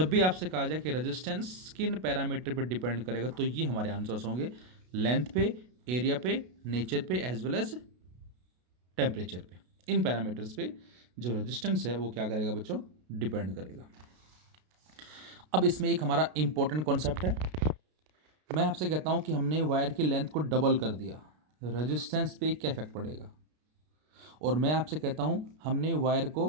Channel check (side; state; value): left; late; 33 ms